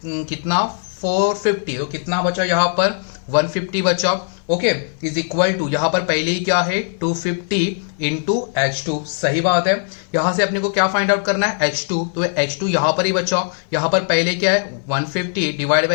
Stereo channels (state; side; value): silent; right; 59 dB below the other